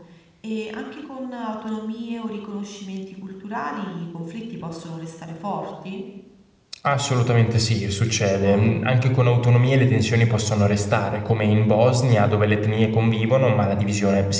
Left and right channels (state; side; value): identical; both; correlation 1.00